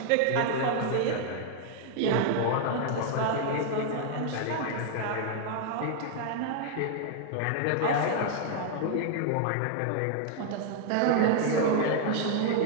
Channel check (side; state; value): both; different; correlation 0.00